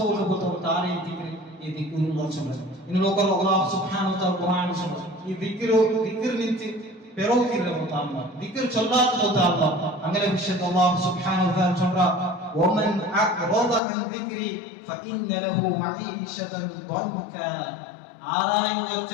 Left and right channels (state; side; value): drops out; right; at 13.8 s